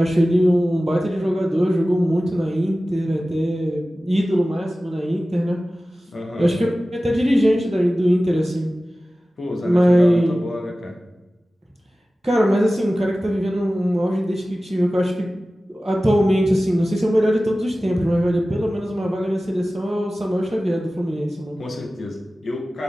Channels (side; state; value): both; normal; correlation 0.96